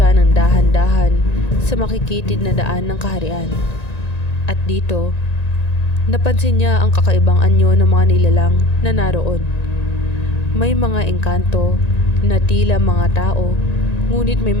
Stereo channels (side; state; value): right; late; 1.9 ms